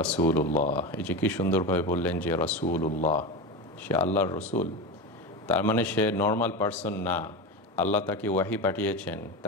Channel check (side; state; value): both; normal; correlation 0.22